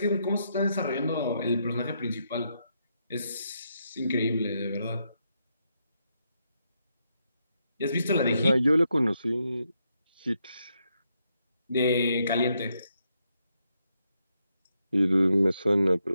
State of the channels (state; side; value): inverted; both; correlation -0.80